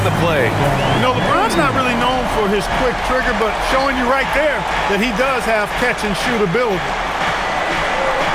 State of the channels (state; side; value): identical; both; correlation 1.00